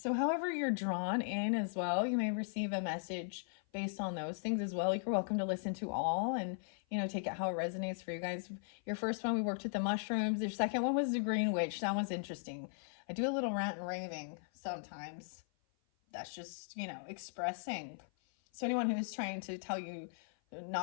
however you're drawn in as well, you may receive a message based on those things as well. You're welcome to listen to all and, take it how it resonates for you guys. Your first one, we worked with the mushrooms. Your second one was the green witch. That one's interesting. I do a little rant and raving sometimes. That's just, expressing. So anyone who's trying to tell you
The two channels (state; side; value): silent; right; 52 dB below the other